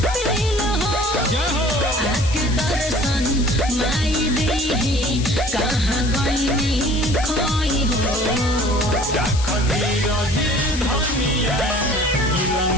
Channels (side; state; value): left; noise; hiss, 11 dB below the sound